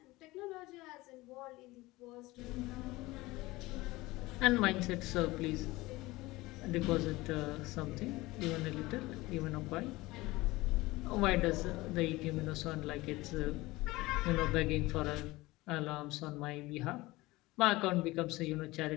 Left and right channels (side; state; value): right; quieter; 20.1 dB